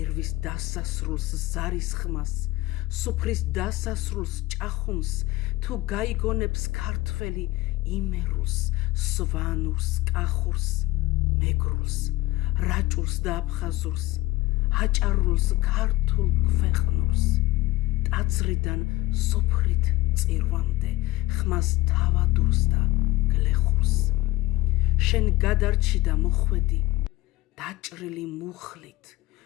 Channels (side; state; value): right; quieter; 18.0 dB